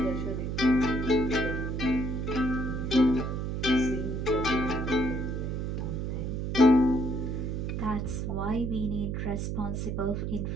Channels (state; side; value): noise; right; hum, 2 dB below the sound